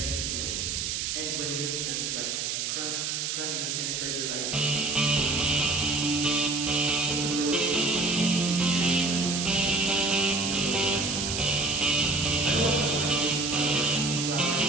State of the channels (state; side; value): noise; right; hiss, 1 dB below the sound